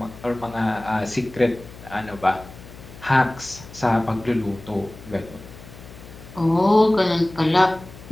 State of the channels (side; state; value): left; noise; hum, 17 dB below the sound